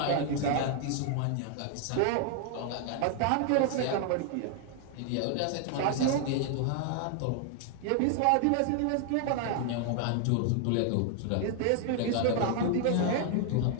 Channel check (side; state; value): both; different; correlation 0.00